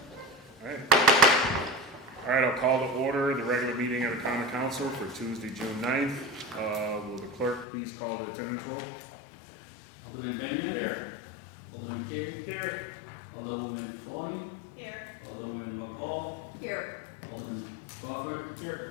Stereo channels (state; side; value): drops out; right; at 7.7 s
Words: All right, I'll call to order the regular meeting of the Common Council for Tuesday, June 9th. Will the clerk please call the attendance roll? Alderman Benyon. Here. Alderman Carey. Here. Alderwoman Forney. Here. Alderwoman McCall. Here. Alderman Crawford. Here.